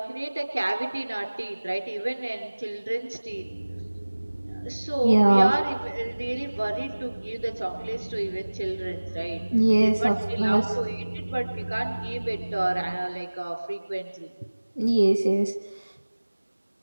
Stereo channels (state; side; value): inverted; both; correlation -1.00